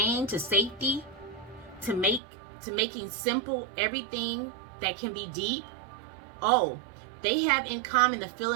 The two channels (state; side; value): drops out; left; at 2.2 s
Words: to safety, to making simple everything that can be deep. Oh, they have in common the